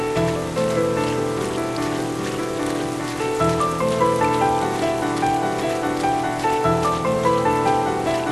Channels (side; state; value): left; noise; rumble, 22 dB below the sound